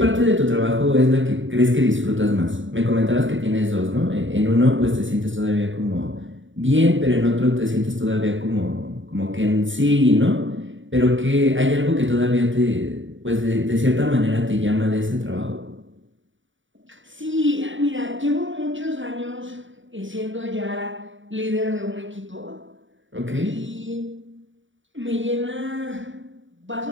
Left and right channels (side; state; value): left; late; 0.56 ms